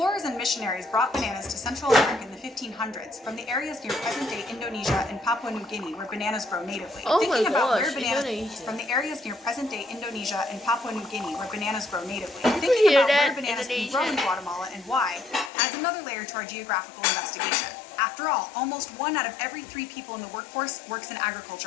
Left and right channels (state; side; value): drops out; right; at 15.5 s